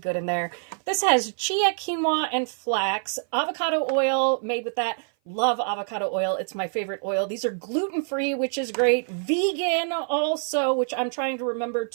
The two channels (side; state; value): left; silent; 57 dB below the other